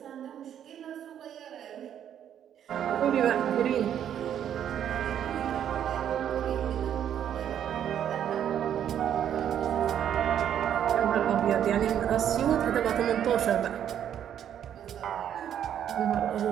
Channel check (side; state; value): left; quieter; 9.7 dB